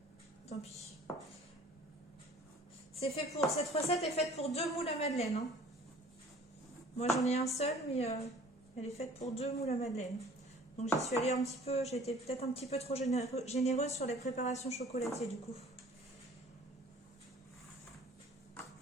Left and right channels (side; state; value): both; normal; correlation 0.50